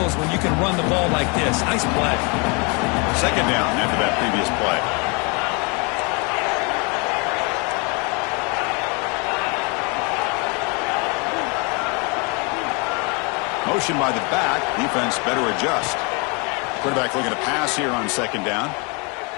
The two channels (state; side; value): quieter; right; 31.9 dB